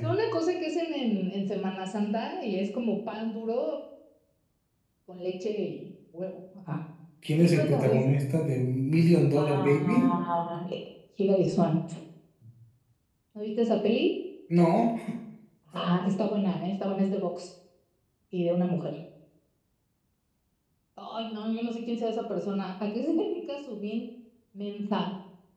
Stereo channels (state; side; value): identical; both; correlation 1.00